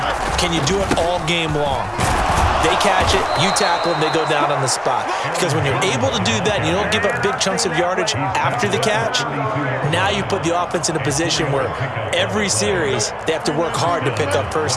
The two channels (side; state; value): both; identical; correlation 1.00